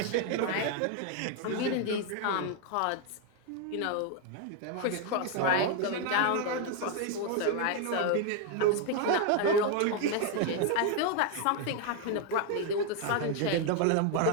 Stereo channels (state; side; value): different; both; correlation 0.01